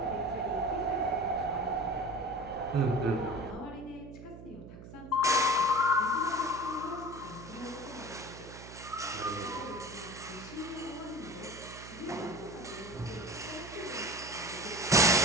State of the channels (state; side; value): noise; right; hum, 14 dB below the sound